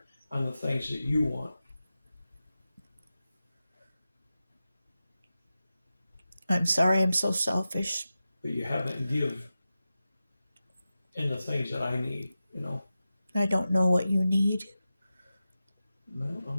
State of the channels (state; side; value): inverted; both; correlation -0.93